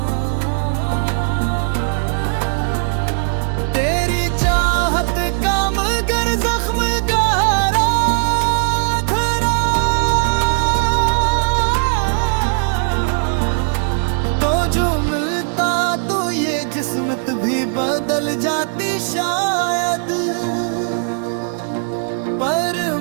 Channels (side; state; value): left; silent; 61 dB below the other